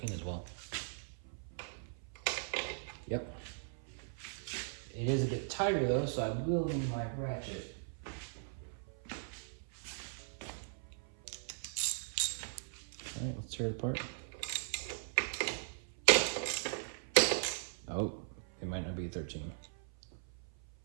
as well. Yep. It is a bit tighter though, so I will need my ratchet. All right, let's tear it apart. Oh, it might not be a 13.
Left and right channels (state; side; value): silent; left; 52 dB below the other